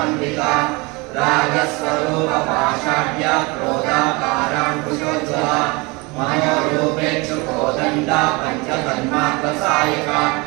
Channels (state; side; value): quieter; left; 26.5 dB